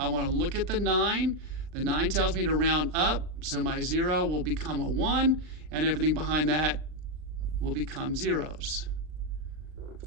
want to look at the 9. The 9 tells me to round up, so my 0 will become a 1, and everything behind that will become zeros.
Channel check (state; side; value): late; left; 39 ms